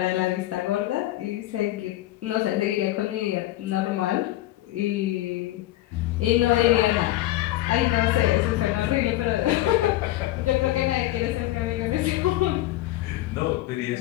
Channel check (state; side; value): quieter; right; 15.8 dB